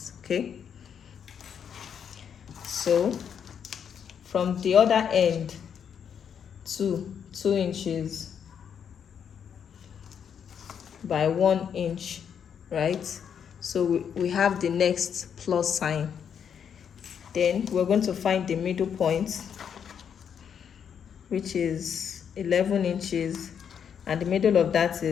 okay? So from the other end to 2 inches by 1 inch, right? So we have the next plus sign. Then we're going to find the middle point, which is 11 inches, and the middle of that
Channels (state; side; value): quieter; right; 7.9 dB